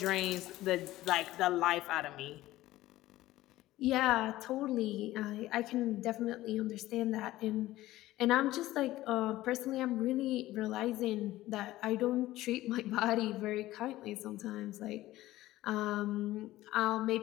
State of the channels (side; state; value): right; quieter; 16.2 dB